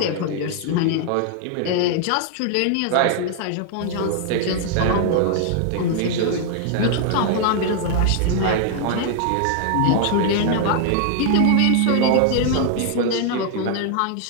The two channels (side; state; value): both; different; correlation 0.00